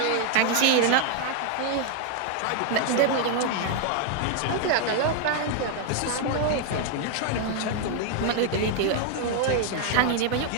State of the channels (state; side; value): different; both; correlation 0.00